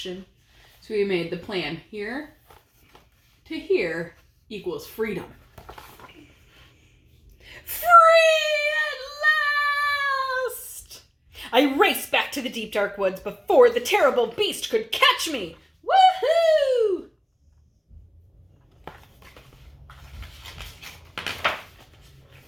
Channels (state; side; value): identical; both; correlation 1.00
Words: So we made the plan here to here equals freedom. Free at last! I raced back to the deep dark woods before the terrible beast could catch me. Woohoo!